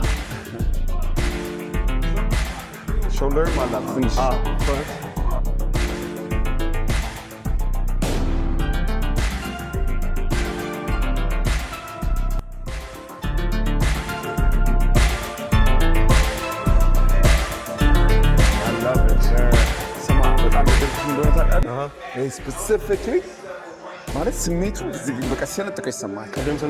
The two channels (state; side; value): identical; both; correlation 1.00